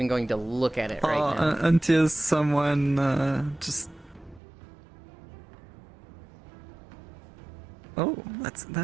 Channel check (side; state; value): left; drops out; at 4.4 s